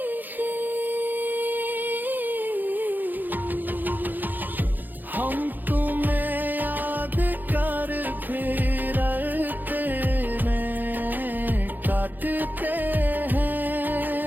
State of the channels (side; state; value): left; late; 0.087 ms